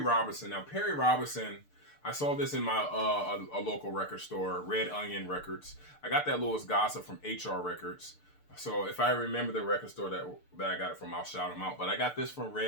Now, Perry Robinson, I saw this in my a local record store, Red Onion Records. I got that Louis Gossa from HR Records. So if I remember the record store that I got it from, I'll shout them out. But I got this from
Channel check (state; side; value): late; right; 6.7 ms